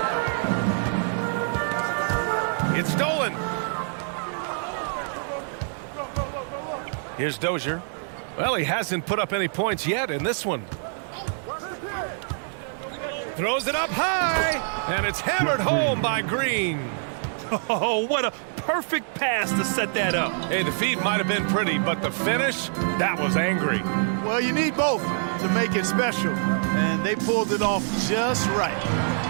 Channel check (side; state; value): left; silent; digital silence